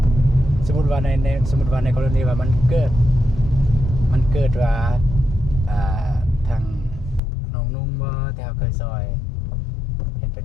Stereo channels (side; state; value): right; drops out; at 7.2 s